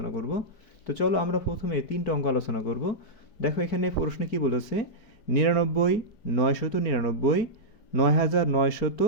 করব। তো চলো আমরা প্রথমে 3টা অঙ্ক আলোচনা করব। দেখো এখানে প্রশ্নে কি বলেছে, 99, 999,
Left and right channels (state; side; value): late; right; 4.4 ms